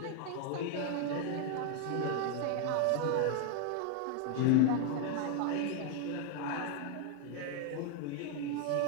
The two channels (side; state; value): both; different; correlation 0.00